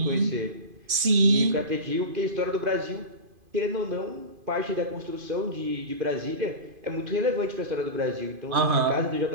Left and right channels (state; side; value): late; left; 2.5 ms